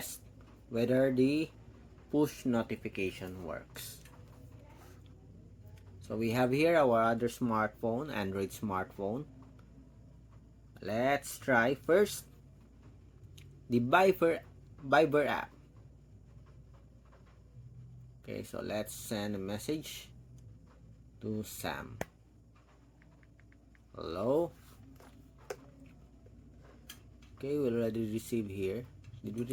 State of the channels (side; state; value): both; identical; correlation 1.00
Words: whether the push notification works. So we have here our other smartphone, Android smartphone. Let's try first the Viber app. Okay, so let's send a message to Sam. Hello. Okay, we already received here. Did we